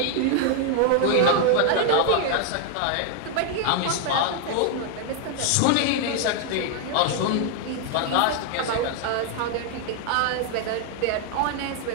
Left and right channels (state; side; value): different; both; correlation 0.00